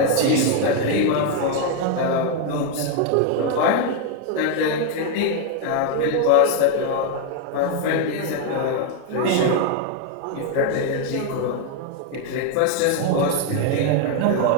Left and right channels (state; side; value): different; both; correlation 0.01